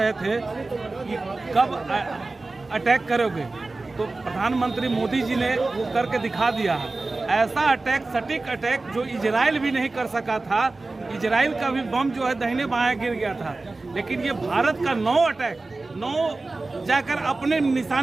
थे कि कब अटैक करोगे, तो प्रधानमंत्री मोदी जी ने वो करके दिखा दिया है। ऐसा अटैक, सटीक अटैक जो इजराइल भी नहीं कर सका था। इजराइल का भी बम जो है दाहिने बाएं गिर गया था, लेकिन ये भारत का 9 अटैक 9 जाकर अपने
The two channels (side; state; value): left; quieter; 3.4 dB